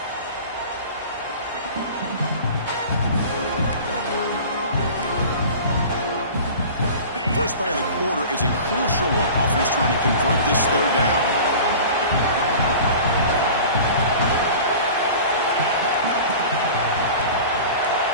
First play of the quarter is a crucial one. Offense trying to convert this 3rd down.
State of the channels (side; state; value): both; inverted; correlation -0.39